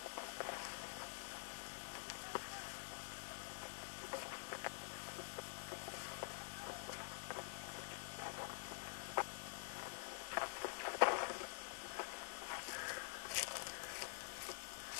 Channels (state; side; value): silent; right; digital silence